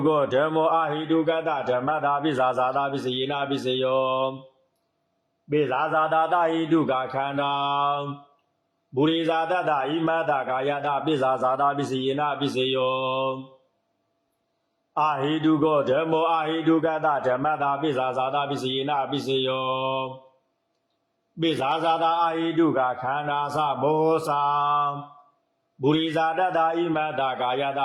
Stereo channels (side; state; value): both; identical; correlation 1.00